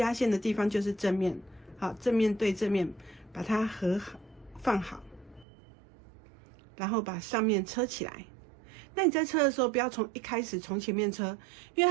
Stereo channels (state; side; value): drops out; left; at 5.5 s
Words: 线的地方就是正面，好，正面对正面，把它放好，然后把上面车起来。那你在车的时候，不要一开始从前面车，因